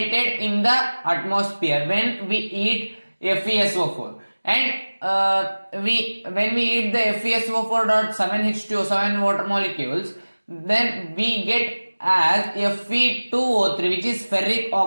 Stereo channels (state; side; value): inverted; both; correlation -1.00